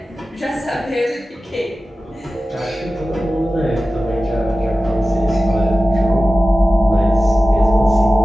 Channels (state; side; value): normal; both; correlation 0.95